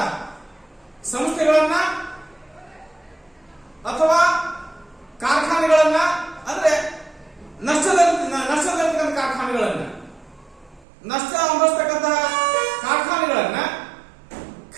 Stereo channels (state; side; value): drops out; left; at 10.9 s